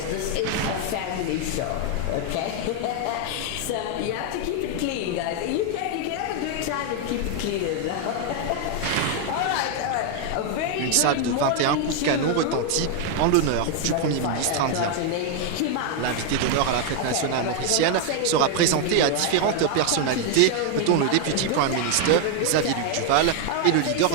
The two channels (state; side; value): different; both; correlation 0.01